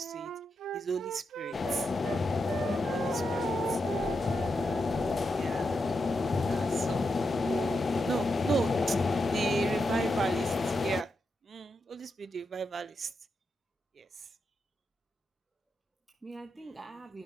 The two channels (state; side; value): normal; both; correlation 0.85